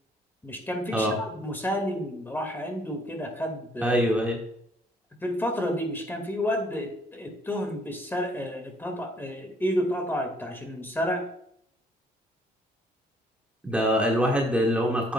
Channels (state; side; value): normal; both; correlation 0.64